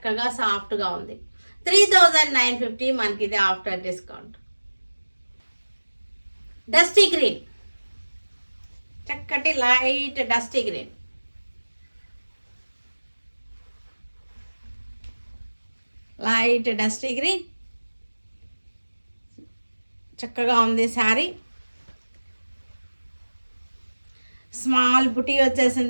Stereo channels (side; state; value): both; inverted; correlation -1.00